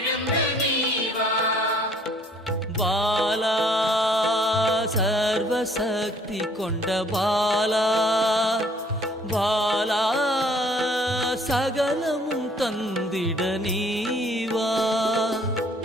நீவா பாலா சர்வசக்தி கொண்ட பாலா பாலா சகலமும் தந்திட நீவா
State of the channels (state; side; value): normal; both; correlation 0.59